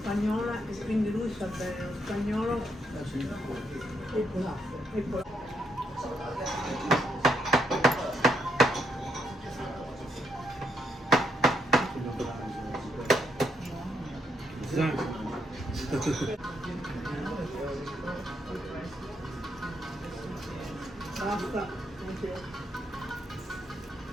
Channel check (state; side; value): normal; both; correlation 0.76